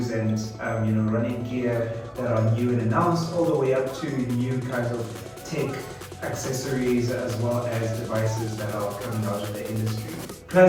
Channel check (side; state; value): both; identical; correlation 1.00